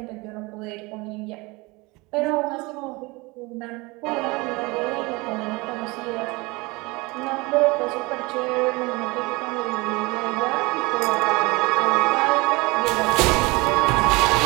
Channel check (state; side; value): quieter; left; 24.5 dB